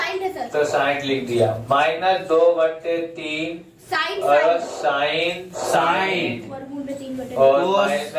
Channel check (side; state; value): both; identical; correlation 1.00